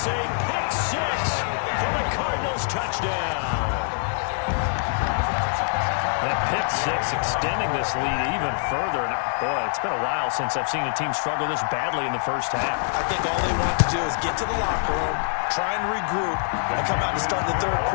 a pick 6 for the Cardinals touchdown. That pick 6 extending this lead even further. And boy, it's been a while since I've seen a team struggle this badly in the first half. I think all they want to do is get to the locker room, try and regroup, and come out to start the third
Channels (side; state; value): right; silent; 62 dB below the other